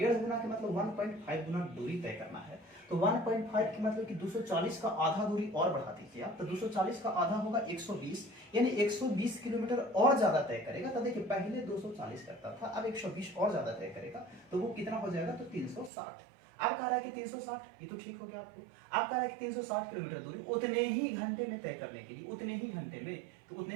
गुना के मतलब 1.5 गुना दूरी तय करना है। तो 1.5 के मतलब कि 240 का आधा दूरी और बढ़ा दीजिए आप, तो 240 का आधा होगा 120, यानी 120 किलोमीटर और ज्यादा तय करेगा। तो देखिए पहले 240 करता था, अब 120 और ज्यादा तय करेगा, तो वो कितना हो जाएगा, तो 360। अब कह रहा है कि 360, ये तो ठीक हो गया आपको। अब कह रहा है कि 360 किलोमीटर दूरी उतने ही घंटे में तय करने के लिए, उतने ही घंटे में, तो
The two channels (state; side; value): drops out; left; at 15.9 s